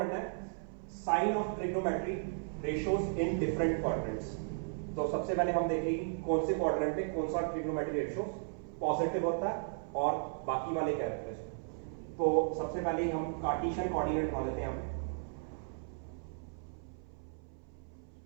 है sign of trigonometry ratios in different quadrants. तो सबसे पहले हम देखेंगे कौन से क्वाड्रेंट में कौन सा ट्रिग्नोमेट्री रेशियो पॉजिटिव होता है और बाकी वाले क्या रहते हैं। तो सबसे पहले हम कार्टेशियन कोऑर्डिनेट बना लेते हैं यहाँ पे।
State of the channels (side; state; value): left; silent; 54 dB below the other